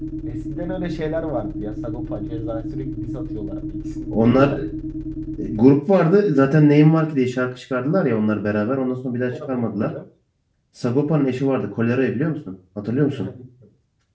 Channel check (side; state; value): both; identical; correlation 1.00